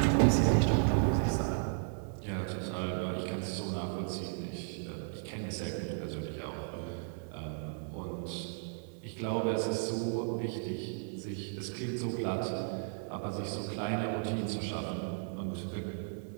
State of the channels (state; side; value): silent; left; digital silence